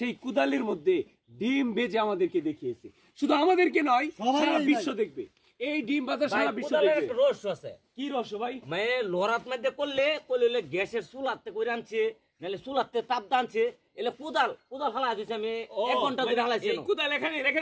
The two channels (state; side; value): identical; both; correlation 1.00